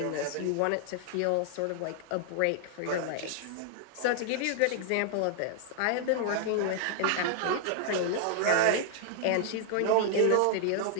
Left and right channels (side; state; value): both; different; correlation 0.00